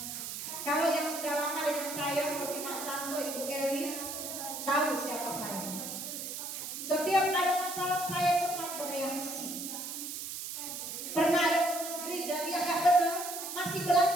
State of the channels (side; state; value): right; noise; hiss, 6 dB below the sound